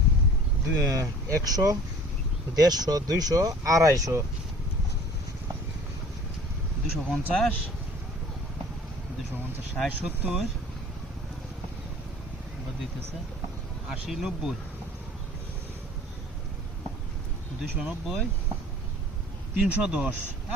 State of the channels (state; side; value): normal; both; correlation 0.48